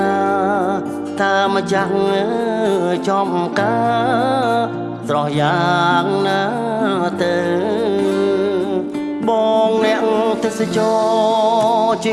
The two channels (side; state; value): both; identical; correlation 1.00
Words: ណាថាម្ចាស់ចំការស្រស់យ៉ាងណាទៅបងអ្នកទេសចរជិ